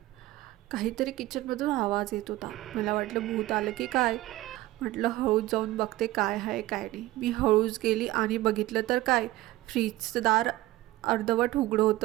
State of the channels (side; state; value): left; quieter; 17.0 dB